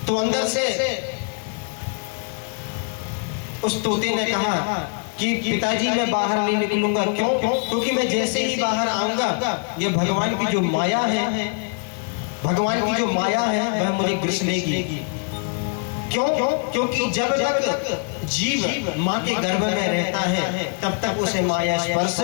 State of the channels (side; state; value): right; quieter; 38.9 dB